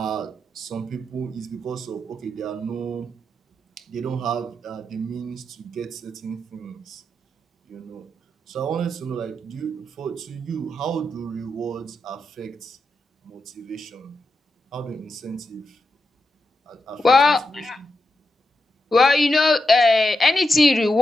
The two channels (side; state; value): both; normal; correlation 0.86